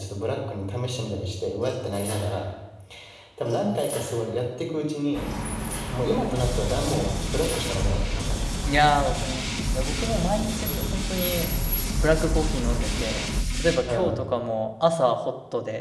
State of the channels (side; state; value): both; identical; correlation 1.00